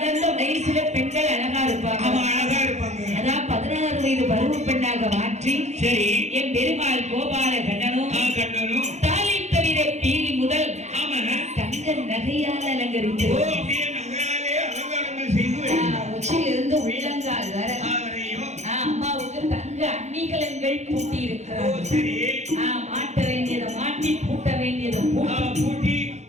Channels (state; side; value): late; left; 0.33 ms